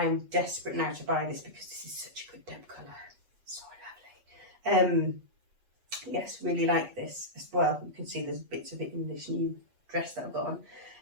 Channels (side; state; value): left; late; 8.2 ms